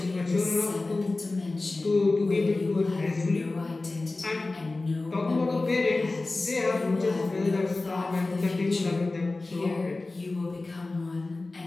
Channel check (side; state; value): right; quieter; 3.3 dB